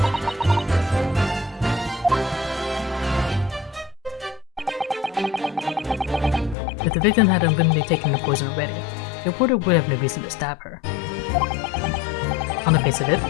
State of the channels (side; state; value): right; drops out; at 6.6 s